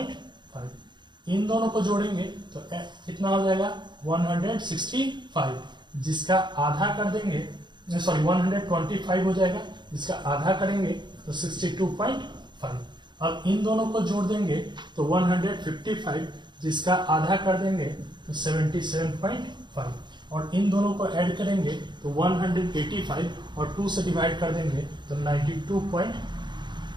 इन दोनों को जोड़ेंगे तो कितना हो जाएगा 165, जिसका आधा कर देंगे, सॉरी 125 हो जाएगा, जिसका आधा करेंगे तो 62.5। अब इन दोनों को जोड़ देंगे तो 155, जिसका आधा कर देंगे तो 77.5, और इन दोनों को ऐड करेंगे तो 185 और 2 से डिवाइड कर देंगे तो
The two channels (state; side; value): late; left; 0.22 ms